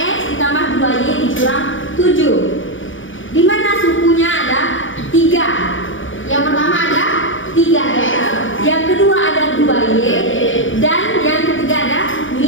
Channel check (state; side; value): late; right; 0.57 ms